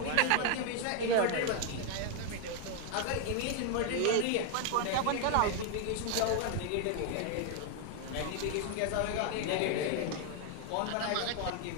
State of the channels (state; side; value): different; both; correlation 0.00